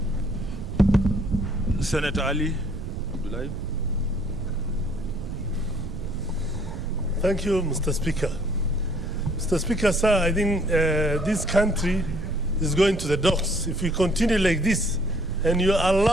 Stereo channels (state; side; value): noise; right; rumble, 8 dB below the sound